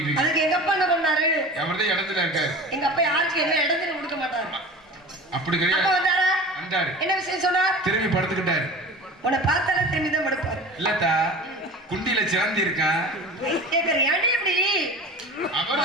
இருக்கேன். அதுக்கு எங்க அப்பா என்ன பண்ணாரு? அவர்தான் இடத்துல இருக்காரு. எங்க அப்பா யாருக்கு என்ன இடத்துல கொடுக்க மாட்டாரு. அப்படி கிடையாது. அப்பா வந்தாரா? வந்தாரு. என்ன விஷயம் சொன்னார்? திரும்பி படுத்துக்கிட்டாரு. உன்னை பார்த்தாலே திரும்பி தான் படுப்பாரு. இல்லத்தா, குண்டில சிறந்தி இருக்கான். கேக்குற ஏன்டி இப்படி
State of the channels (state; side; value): normal; both; correlation 0.36